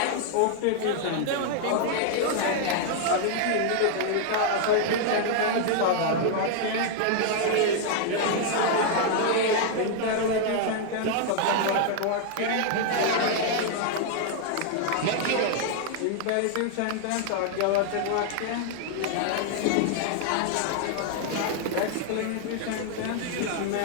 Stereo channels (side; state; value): both; different; correlation -0.01